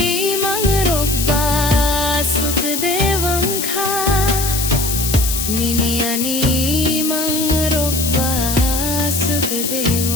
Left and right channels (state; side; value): noise; left; hiss, 2 dB below the sound